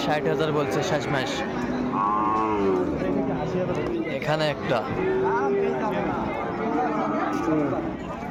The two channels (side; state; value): both; identical; correlation 1.00